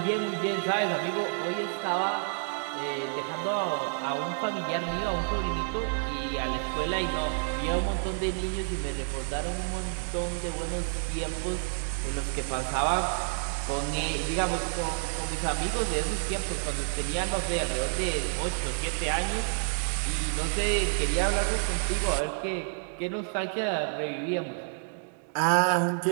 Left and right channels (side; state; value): left; silent; digital silence